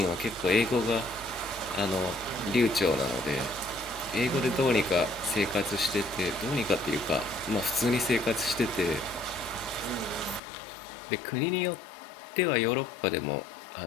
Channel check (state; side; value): drops out; right; at 10.4 s